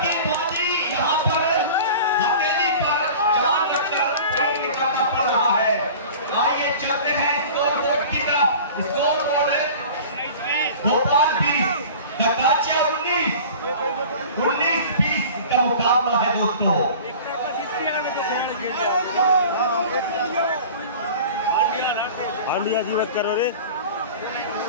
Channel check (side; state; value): both; inverted; correlation -0.40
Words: की बाजी यहाँ पर हथेली पर जान रखकर खेल निकालना पड़ रहा है। आइए चलते हैं स्कोर बोर्ड की तरफ। स्कोर बोर्ड है भोपाल 20, ढकाचिया 19-20 का मुकाबला है दोस्तों। हांडिया जीवत करो रे।